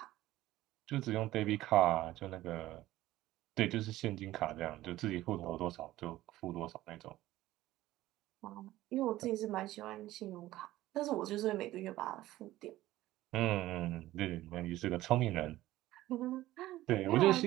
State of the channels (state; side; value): quieter; left; 15.8 dB